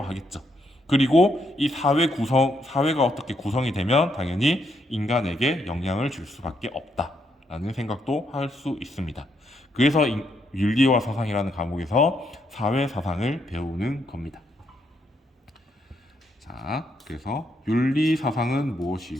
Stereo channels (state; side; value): normal; both; correlation 0.76